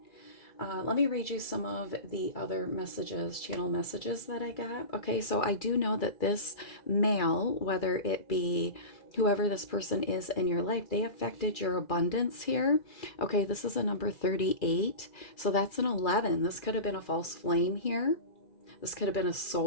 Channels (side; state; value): right; late; 2.4 ms